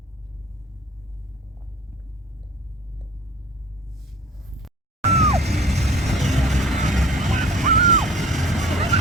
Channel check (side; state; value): both; normal; correlation 0.47